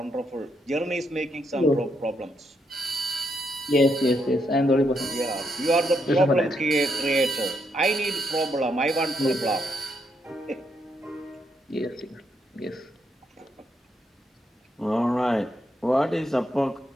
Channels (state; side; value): normal; both; correlation 0.78